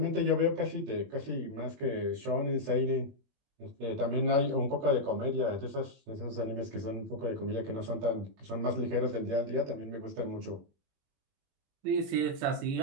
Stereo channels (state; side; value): late; left; 21 ms